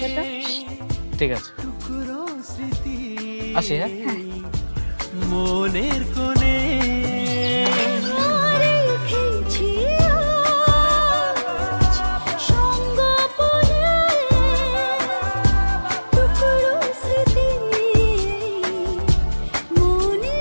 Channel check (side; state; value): both; inverted; correlation -1.00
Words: তো। ঠিক আছে, আসি। হ্যাঁ, মনের কোণে